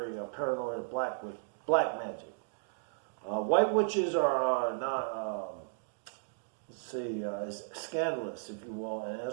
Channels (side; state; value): left; silent; digital silence